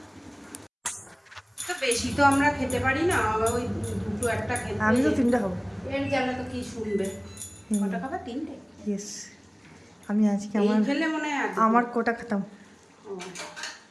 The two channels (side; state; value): both; identical; correlation 1.00